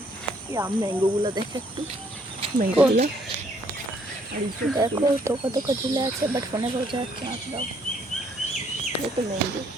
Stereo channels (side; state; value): both; normal; correlation 0.66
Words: এই ম্যাঙ্গোগুলো দেখে একটু, ম্যাঙ্গোগুলো দেখো তোকা তোকা ঝুলে আছে, বাট ফোনে বোঝা যাচ্ছে না। দাও দেখো ম্যাঙ্গো,